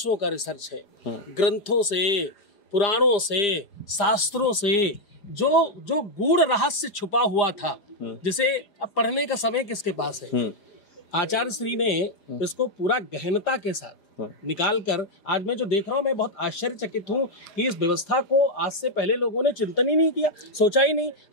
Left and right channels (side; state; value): right; late; 4.9 ms